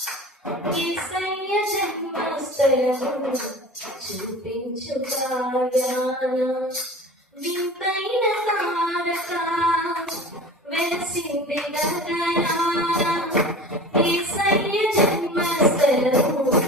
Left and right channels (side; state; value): both; normal; correlation 0.38